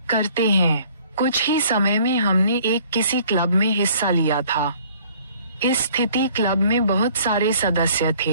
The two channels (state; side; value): inverted; both; correlation -0.56